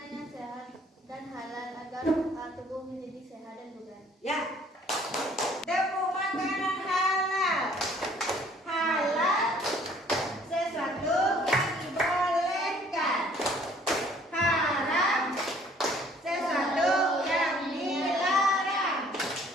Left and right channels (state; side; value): normal; both; correlation 0.58